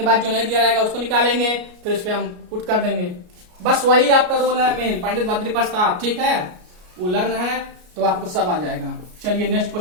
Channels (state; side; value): late; left; 33 ms